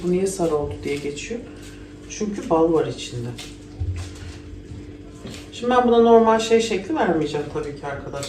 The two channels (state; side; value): identical; both; correlation 1.00